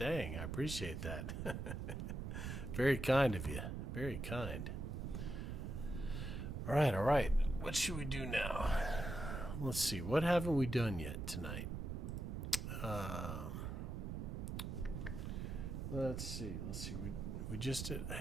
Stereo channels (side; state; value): right; noise; rumble, 4 dB below the sound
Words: I appreciate that. Very kind of you. Very kind. All right, all right. What should we do now? Let's see. What haven't we done yet tonight? Let's see. We just did.